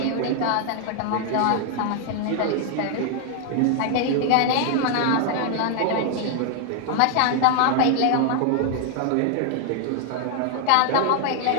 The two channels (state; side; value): different; both; correlation 0.00